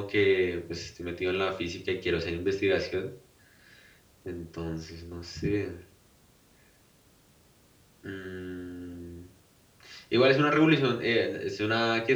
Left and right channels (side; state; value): both; identical; correlation 1.00